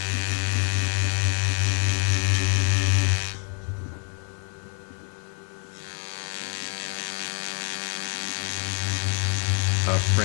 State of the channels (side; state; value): right; quieter; 39.2 dB